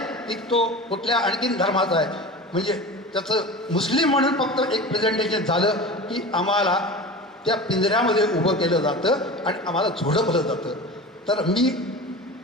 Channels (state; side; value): normal; both; correlation 0.32